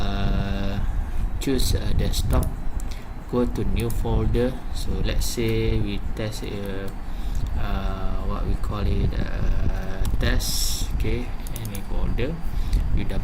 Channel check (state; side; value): identical; both; correlation 1.00